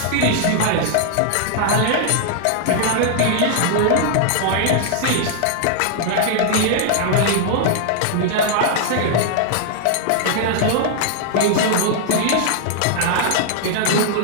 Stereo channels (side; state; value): both; different; correlation -0.01